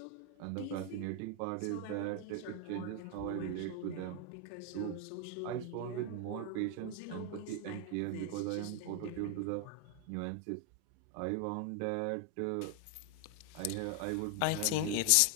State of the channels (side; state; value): both; different; correlation 0.00